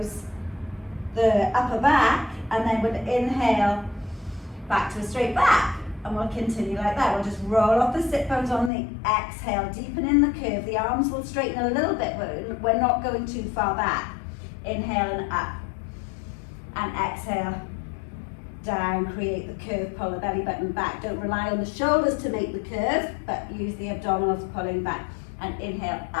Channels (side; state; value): right; drops out; at 8.7 s